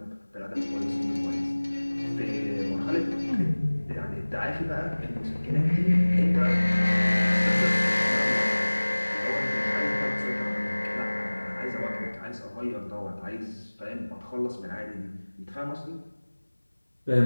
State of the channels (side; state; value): both; inverted; correlation -1.00